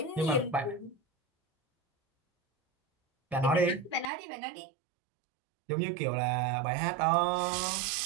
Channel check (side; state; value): left; drops out; at 4.1 s